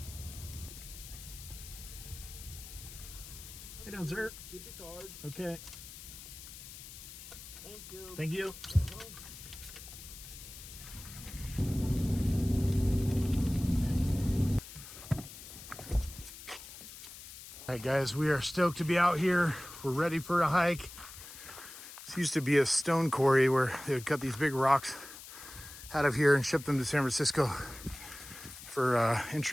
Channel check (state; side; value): noise; left; hiss, 14 dB below the sound